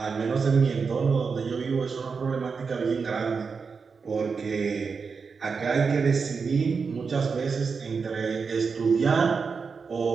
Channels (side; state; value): left; quieter; 5.2 dB